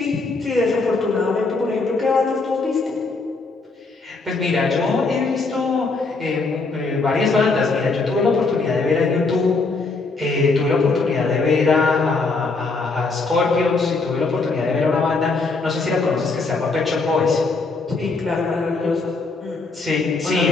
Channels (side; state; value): right; quieter; 3.8 dB